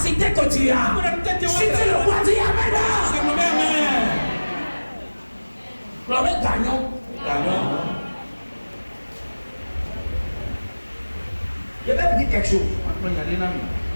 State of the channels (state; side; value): inverted; both; correlation -1.00